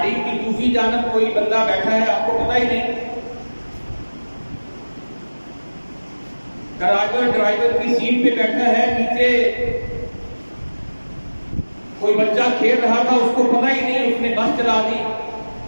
کی دوسری دوسری جانب کوئی بندہ بیٹھا ہے آپ کو پتہ ہی نہیں. ڈرائیور کی سیٹ پہ بیٹھا ہے, نیچے کوئی بچہ کھیل رہا تھا, اس کو پتہ ہی نہیں, اس نے بس چلا دی,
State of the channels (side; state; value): both; inverted; correlation -1.00